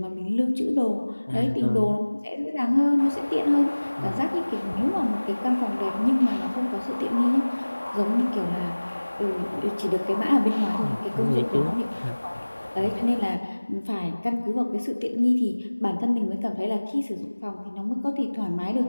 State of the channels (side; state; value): both; inverted; correlation -1.00